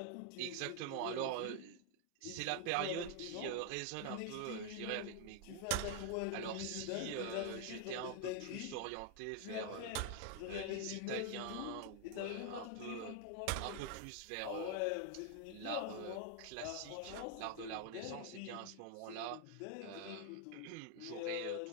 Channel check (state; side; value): different; both; correlation 0.00